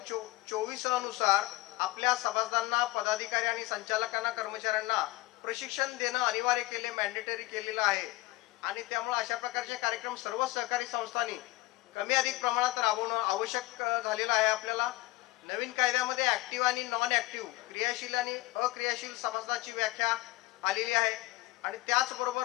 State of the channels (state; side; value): quieter; right; 19.7 dB